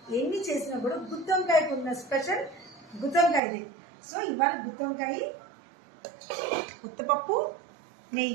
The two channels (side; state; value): left; drops out; at 3.4 s